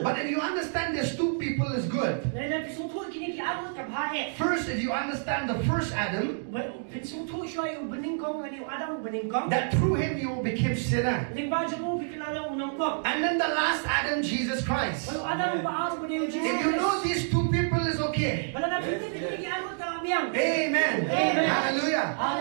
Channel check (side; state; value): left; silent; digital silence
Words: But if you understand there's two people, is good. First, if you understand the first Adam, that through him you became sinner. And then the last Adam, Jesus Christ. If you know these two people is okay okay. Amen. Amen. Hallelujah.